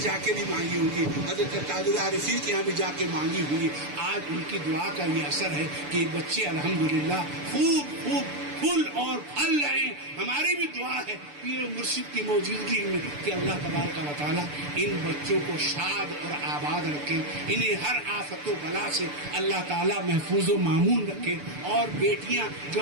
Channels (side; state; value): left; late; 6.8 ms